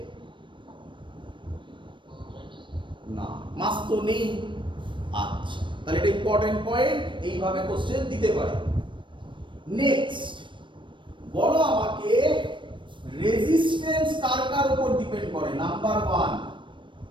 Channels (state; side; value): late; left; 0.24 ms